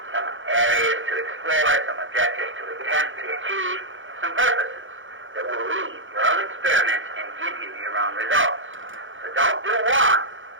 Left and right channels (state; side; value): late; left; 0.57 ms